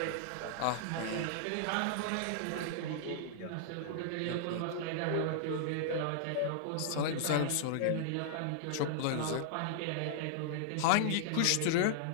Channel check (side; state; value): both; different; correlation -0.01